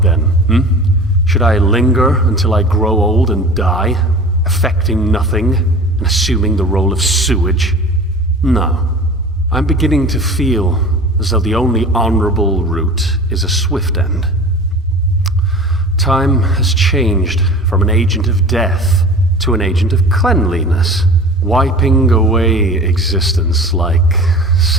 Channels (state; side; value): normal; both; correlation 0.39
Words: then, Should I linger until I grow old and die, affecting nothing and assuming the role of sewage? No. I'm beginning to feel as though the only honorable route is a swift end. Time has changed from an agent of death to an agent of cleanliness, wiping away existence like